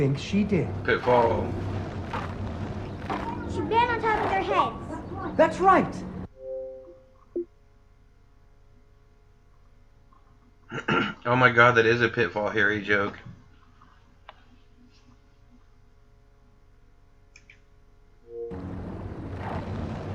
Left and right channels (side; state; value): both; identical; correlation 1.00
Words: she did? Pitfall. She ran on top of their heads. That's right. Oh my god, that is a Pitfall Harry joke.